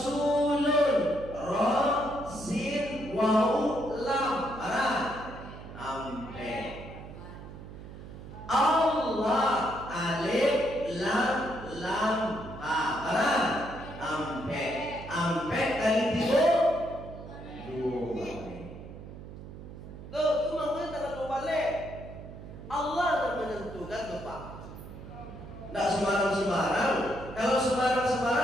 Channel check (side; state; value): right; noise; hum, 13 dB below the sound